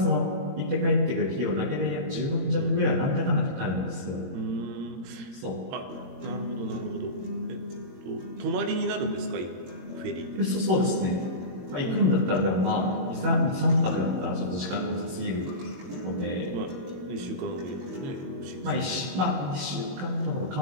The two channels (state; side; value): late; left; 22 ms